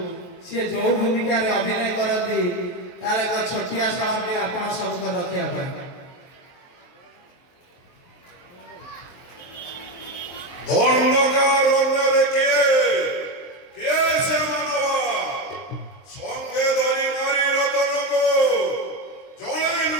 ସିଏ ଯୋଉ ଭୂମିକାରେ ଅଭିନୟ କରନ୍ତି ତାର ଏକ ଛୋଟିଆ ସମୟଟି ଆପଣ ସମ୍ମୁଖ ରଖିବା ପାଇଁ। ଅନ୍ଧକାର ଅନ୍ୟରେ କିଏ ସେ ମାନବ ସଙ୍ଗେ ଧରି ନାରୀ ରତନକୁ ଜଣେ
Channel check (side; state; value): right; late; 23 ms